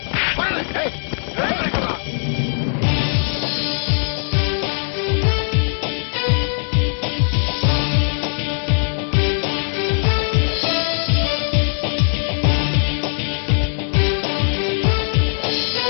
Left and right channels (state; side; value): silent; right; 66 dB below the other